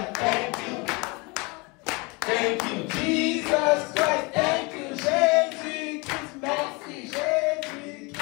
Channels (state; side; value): quieter; right; 27.8 dB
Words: thank you. Thank you. Jesus Christ, thank you. Jésus Christ, merci. Jésus